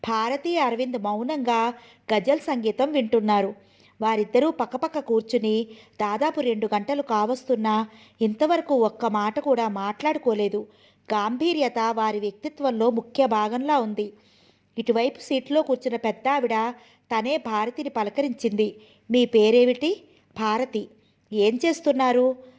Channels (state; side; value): identical; both; correlation 1.00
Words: భారతి, అరవింద్ మౌనంగా గజల్ సంగీతం వింటున్నారు. వారిద్దరూ పక్కపక్క కూర్చుని దాదాపు 2 గంటలు కావస్తున్నా ఇంతవరకు ఒక్క మాట కూడా మాట్లాడుకోలేదు. గాంభీర్యత వారి వ్యక్తిత్వంలో ముఖ్య భాగంలా ఉంది. ఇటువైపు సీట్లో కూర్చున్న పెద్ద ఆవిడ తనే భారతిని పలకరించింది. మీ పేరేమిటి? భారతి. ఏం చేస్తున్నారు?